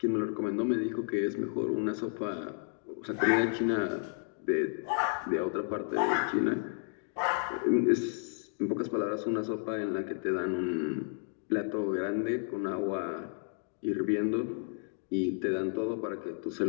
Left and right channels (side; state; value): right; silent; 56 dB below the other